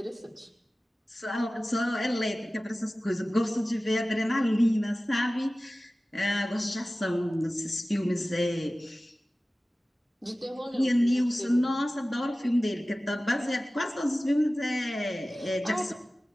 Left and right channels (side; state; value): both; normal; correlation 0.97